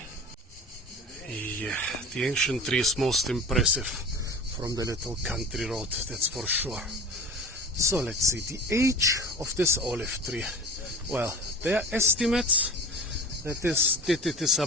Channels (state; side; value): normal; both; correlation 0.36